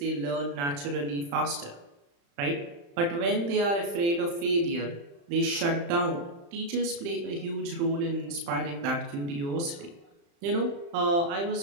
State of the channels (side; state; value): left; late; 35 ms